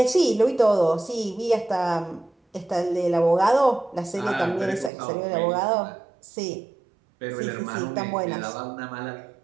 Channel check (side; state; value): left; drops out; at 4.9 s